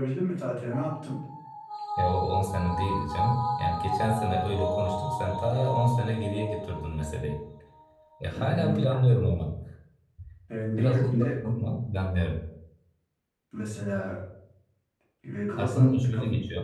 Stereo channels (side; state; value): both; identical; correlation 1.00